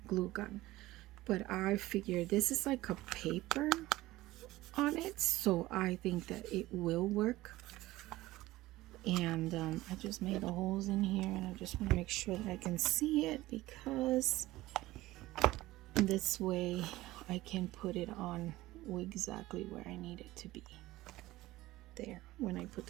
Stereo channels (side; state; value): left; quieter; 17.6 dB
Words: glue gun. But I figure this is like a paper on it, so I think that it will work. And I just made the holes in here, and I just want to make sure that I can see it, because this way I can put it on exactly where I need it to be there when I put